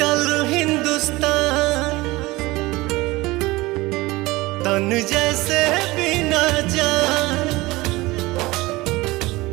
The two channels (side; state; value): left; quieter; 20.7 dB